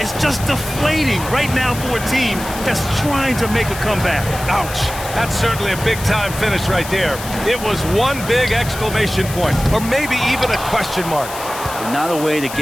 just deflating right now for a team that's trying to make a comeback. Ouch. That's certainly a big-time finish right there. It was one big exclamation point, or maybe even a question mark. Not a way to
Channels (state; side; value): noise; left; hiss, 11 dB below the sound